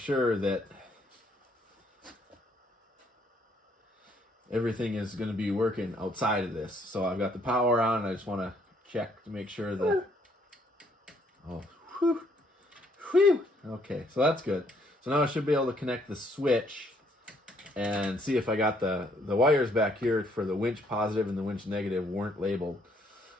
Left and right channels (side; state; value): both; normal; correlation 0.67